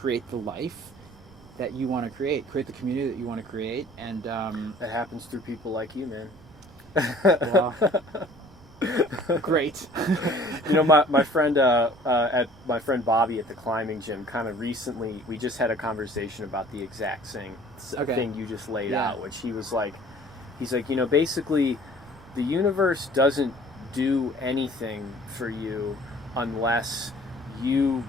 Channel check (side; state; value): right; noise; rumble, 23 dB below the sound